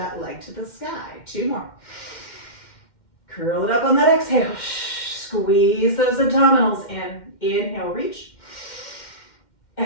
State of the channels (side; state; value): right; late; 2.1 ms